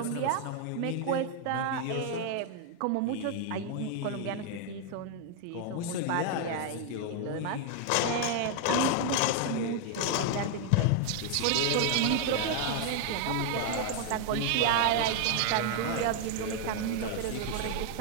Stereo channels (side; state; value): both; different; correlation 0.00